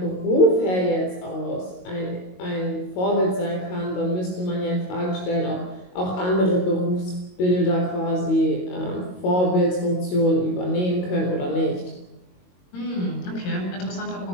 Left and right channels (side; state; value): right; late; 22 ms